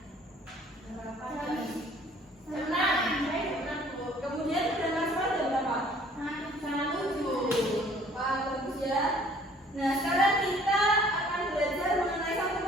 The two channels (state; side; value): normal; both; correlation 0.56